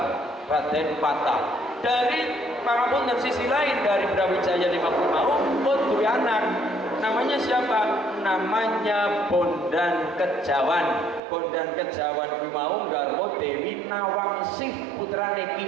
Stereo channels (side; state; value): left; drops out; at 11.2 s